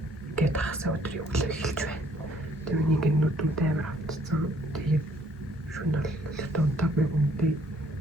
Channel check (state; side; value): normal; both; correlation 0.63